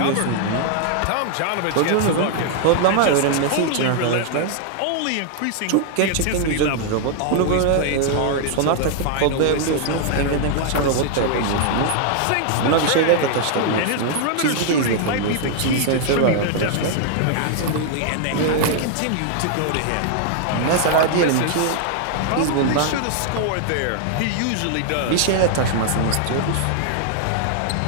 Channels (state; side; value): different; both; correlation 0.00